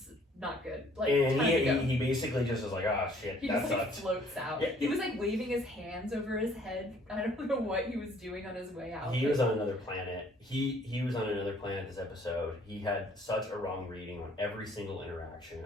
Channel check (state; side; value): normal; both; correlation 0.59